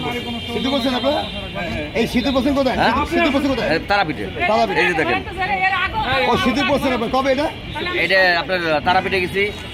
সিদ্ধু বলছেন আপনারা? এই সিদ্ধু বলছেন কোথায়? সিদ্ধু বলছেন কোথায়? তারাপীঠে। তারাপীঠে। এই যে দেখেন ও সিদ্ধু বলছেন আপনার কবে এটা? এটা আপনার তারাপীঠে গেছি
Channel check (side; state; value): both; identical; correlation 1.00